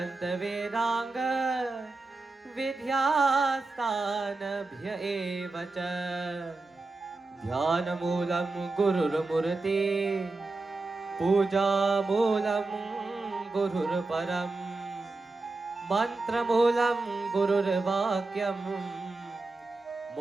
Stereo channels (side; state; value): left; quieter; 3.5 dB